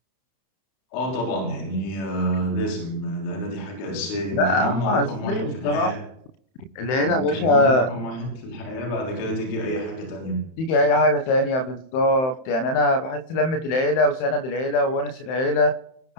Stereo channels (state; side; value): late; right; 31 ms